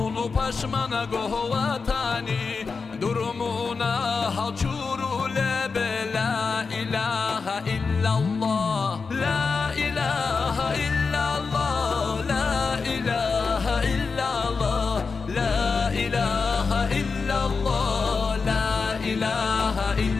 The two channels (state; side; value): quieter; right; 4.8 dB